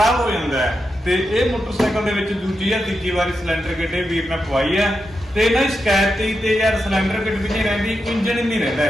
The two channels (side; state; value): both; normal; correlation 0.87